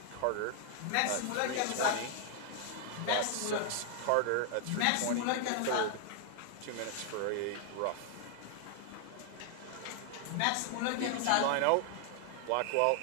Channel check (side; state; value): both; different; correlation 0.00